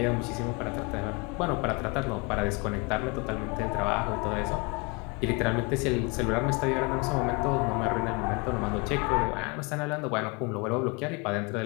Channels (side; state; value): right; quieter; 28.8 dB